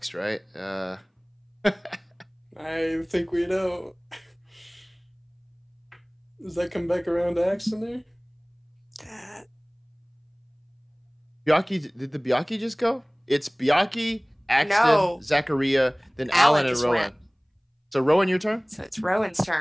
right? I think we know. Does that come back around to Axon there? Byakhee, did the Byakhee just go? It's Byakhee, Axton, Zachariah, then Alan and Rowan. So Rowan, your turn? So it's Rowan's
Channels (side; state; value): both; identical; correlation 1.00